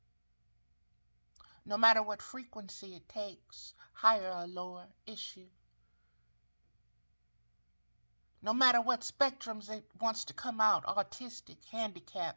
No matter what frequency it takes, higher or lower, it's you. No matter what spectrums it wants to come out, autistic,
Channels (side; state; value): both; inverted; correlation -1.00